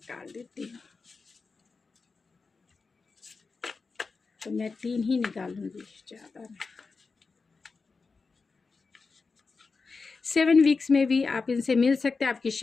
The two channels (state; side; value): quieter; right; 4.4 dB